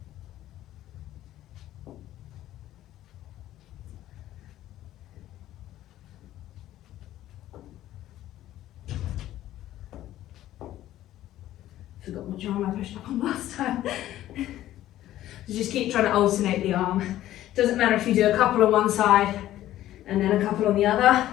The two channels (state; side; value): quieter; right; 13.7 dB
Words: Forgot what arm I pushed up on last time. So just keep trying to alternate the arm. Doesn't matter if you do a couple on one side and then a couple on the other,